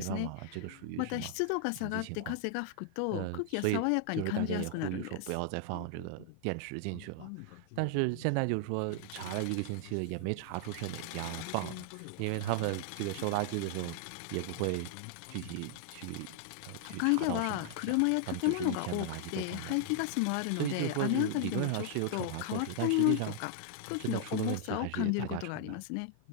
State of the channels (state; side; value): different; both; correlation -0.01